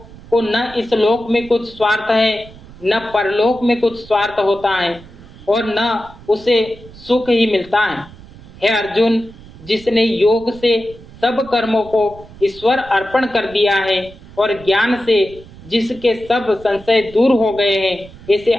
को न इस लोक में कुछ स्वार्थ है न परलोक में कुछ स्वार्थ होता है और न उसे सुख ही मिलता है। हे अर्जुन, जिसने योग से सब कर्मों को ईश्वर अर्पण कर दिया है और ज्ञान से जिसके सब संशय दूर हो गए हैं, ऐसे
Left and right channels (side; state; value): right; noise; rumble, 20 dB below the sound